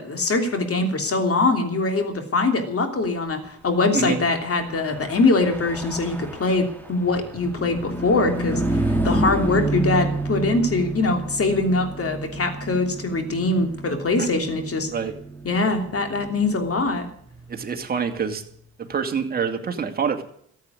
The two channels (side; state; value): both; normal; correlation 0.24